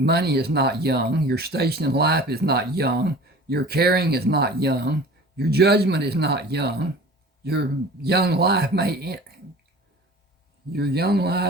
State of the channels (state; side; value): normal; both; correlation 0.42